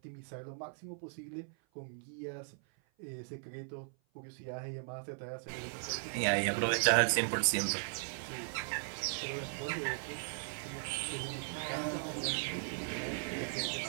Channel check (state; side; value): silent; left; 53 dB below the other